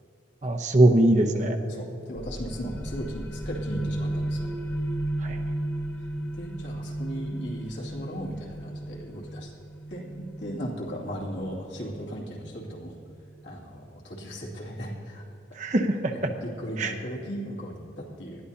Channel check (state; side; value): normal; both; correlation 0.80